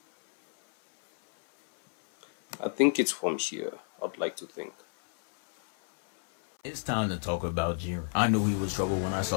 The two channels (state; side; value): silent; right; 58 dB below the other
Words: I think it's from here. I'd like to think. It's time to talk about Jiren. I knew he was trouble when I